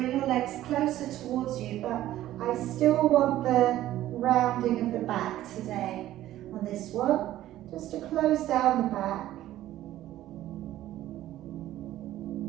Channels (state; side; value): quieter; left; 13.9 dB